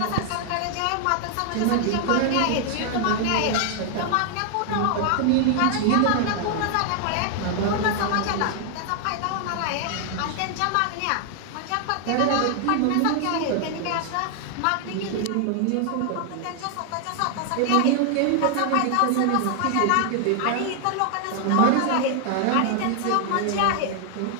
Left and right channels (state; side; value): different; both; correlation 0.00